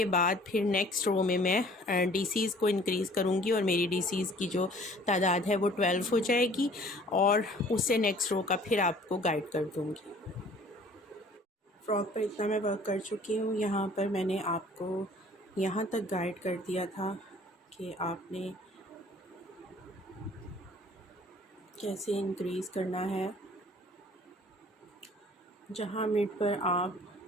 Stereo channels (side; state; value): both; normal; correlation 0.52